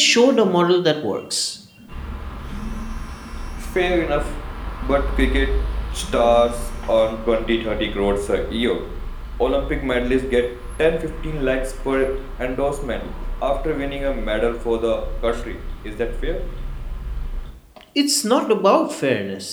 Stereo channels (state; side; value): identical; both; correlation 1.00